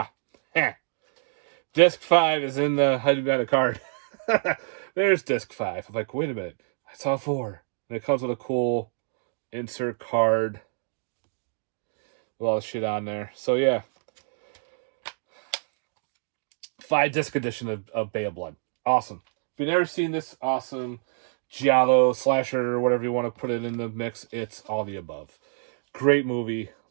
Disc 5 is in the hiding behind the card. There's disc 5. I'm like, wait a minute. I saw 4. And it comes with a cool insert card with all the shit on there. So yeah. 5-disc edition of Bay of Blood. Awesome. If you've never seen this awesome giallo slasher or whatever you want to put it in the mix, it's all the above. Great movie.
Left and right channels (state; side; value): silent; left; digital silence